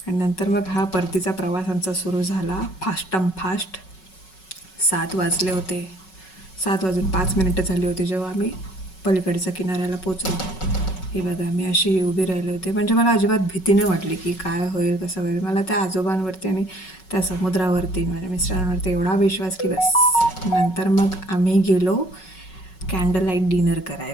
आणि नंतर मग हा परतीचा प्रवास आमचा सुरू झाला, फास्ट. 7 वाजले होते. 7 वाजून 5 मिनिटं झाली होती जेव्हा आम्ही पलीकडच्या किनाऱ्याला पोचलो. हे बघा, मी अशी उभी राहिले होते. म्हणजे मला अजिबात भीती नाही वाटली की काय होईल कसं होईल. मला त्या आजोबांवरती आणि त्या समुद्रावरती, माझ्या मिस्टरांवरती एवढा विश्वास की बस. नंतर मग आम्ही गेलो कॅन्डल लाईट डिनर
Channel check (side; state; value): right; late; 5.4 ms